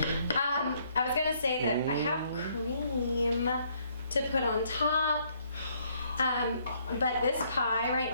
I was gonna say that I have cream to put on top. But this pie right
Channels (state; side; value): inverted; both; correlation -0.68